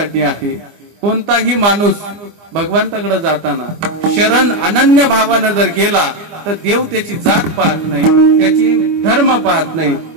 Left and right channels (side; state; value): left; late; 25 ms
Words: आहे. कोणताही माणूस भगवंताकडे जाताना शरण अनन्य भावानं जर गेला तर देव त्याची जात पाहत नाही, त्याची धर्म पाहत नाही,